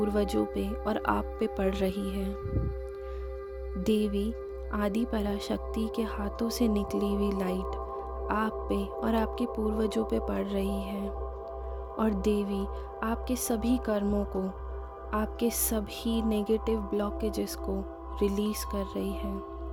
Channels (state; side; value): identical; both; correlation 1.00